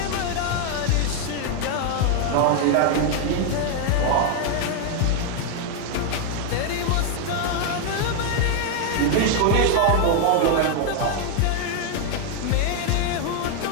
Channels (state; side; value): different; both; correlation 0.01